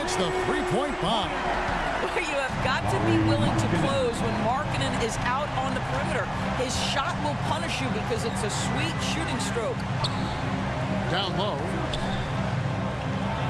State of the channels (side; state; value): both; identical; correlation 1.00